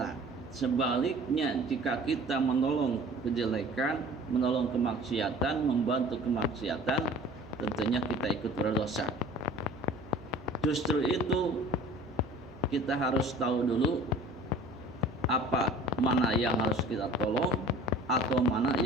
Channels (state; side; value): normal; both; correlation 0.45